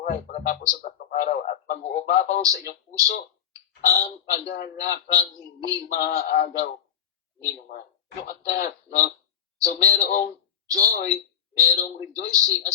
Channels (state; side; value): quieter; right; 9.0 dB